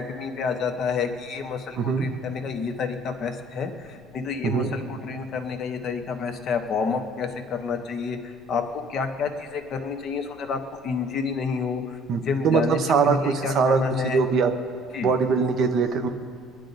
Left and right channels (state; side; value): noise; left; rumble, 27 dB below the sound